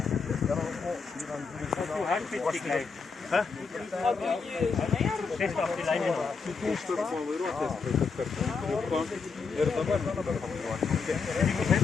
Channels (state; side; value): quieter; right; 5.0 dB